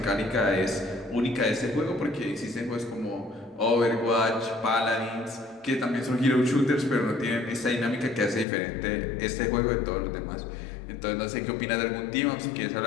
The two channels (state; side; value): drops out; right; at 8.5 s